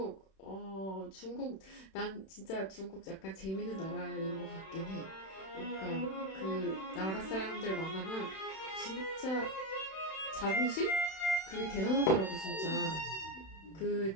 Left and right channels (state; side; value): late; right; 31 ms